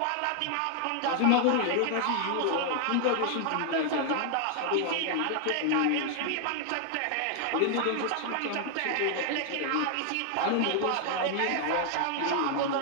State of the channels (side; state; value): both; different; correlation 0.00